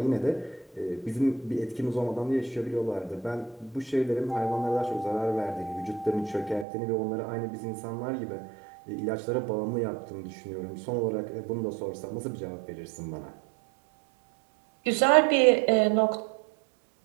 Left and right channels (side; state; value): left; drops out; at 6.7 s